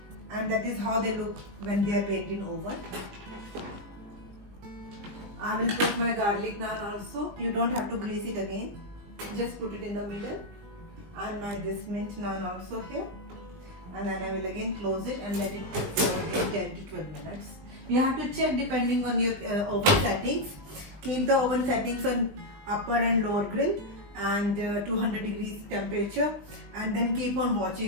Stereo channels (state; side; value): late; left; 19 ms